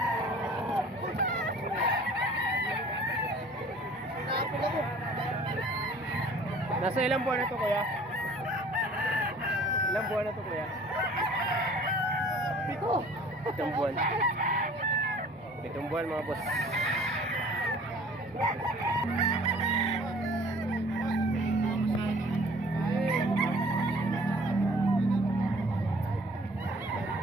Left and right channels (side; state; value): both; normal; correlation 0.50